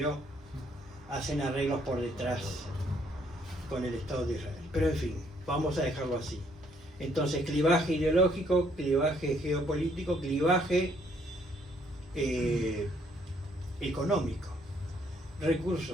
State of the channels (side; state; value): both; normal; correlation 0.67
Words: hacen arreglos por detrás con el Estado de Israel. Pero en fin, vamos a dejarlo así. Entonces, clivaje ideológico, clivaje geopolítico, clivaje económico.